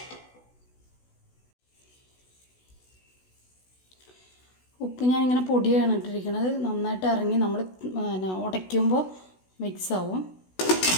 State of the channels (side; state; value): right; late; 16 ms